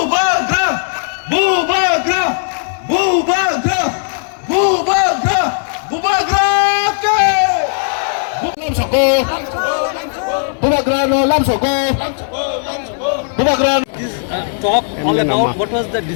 bubagra bubagra bubagra bubagra Lam Soko Bubagrano Lam Soko Bubagrano talk all about what was the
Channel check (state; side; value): silent; right; digital silence